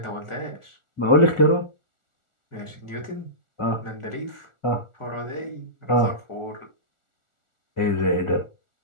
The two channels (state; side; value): late; right; 1.4 ms